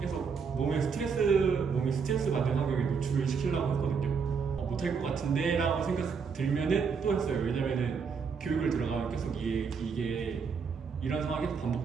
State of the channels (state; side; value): quieter; left; 5.8 dB